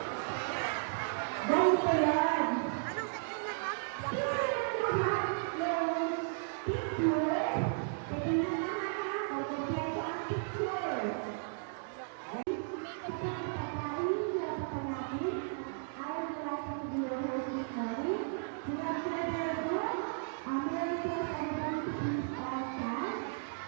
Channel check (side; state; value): left; silent; digital silence